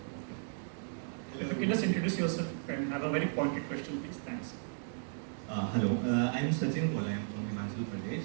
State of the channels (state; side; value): silent; left; digital silence